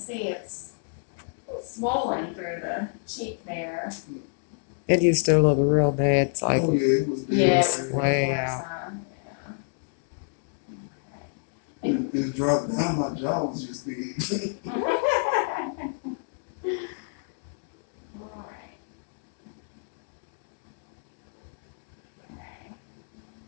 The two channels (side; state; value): right; silent; digital silence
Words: it's swollen through the cheek there. It used to look real bad. It's like, Oh yeah, it was big. Yeah, it was way worse, out. It dropped down. My jaw was just big.